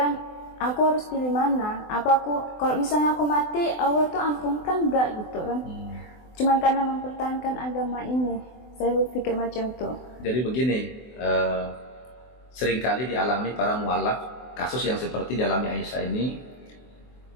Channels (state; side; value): late; right; 24 ms